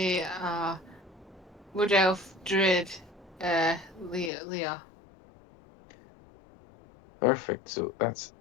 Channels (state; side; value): drops out; right; at 4.3 s